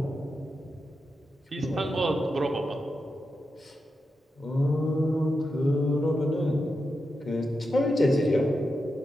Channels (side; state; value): both; normal; correlation 0.88